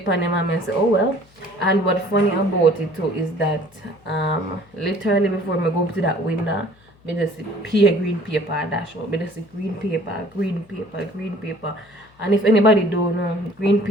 for him and I say, oh well. And what's funny about it too is that literally before I go up to that window, I just see a green paper dash out. I just see green paper, green paper, green paper. And if anybody don't know, green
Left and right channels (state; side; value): noise; left; hum, 30 dB below the sound